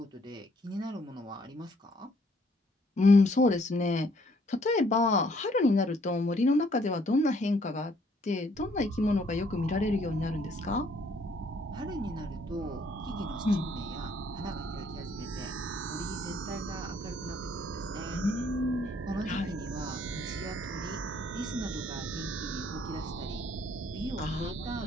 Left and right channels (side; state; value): both; normal; correlation 0.65